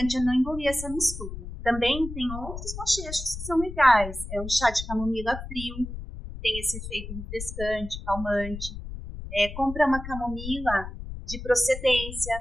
é não engolir essa mistura. Também tem outros bochechos que são legais. É um chá de camomila frio, tem esse efeito refrescante, calmante. Compra uma camomila de procedência,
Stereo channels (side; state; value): left; noise; rumble, 9 dB below the sound